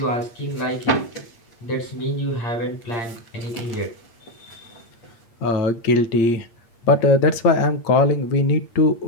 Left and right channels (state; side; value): late; right; 8.7 ms